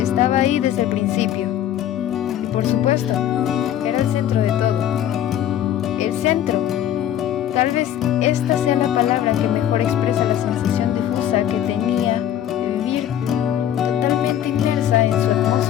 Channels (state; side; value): quieter; right; 10.9 dB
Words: Estaba ahí desde el principio. Y por supuesto, era el centro de todo. El centro. Tal vez esta sea la palabra que mejor expresa la sensación difusa que tenía de vivir totalmente inmersa en su